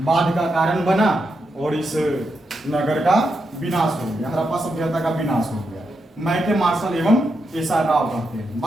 बाढ़ का कारण बना और इस नगर का विनाश हो गया, हड़प्पा सभ्यता का विनाश हो गया। मैके मार्शल एवं एस आर राव कहते हैं,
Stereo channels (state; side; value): normal; both; correlation 0.84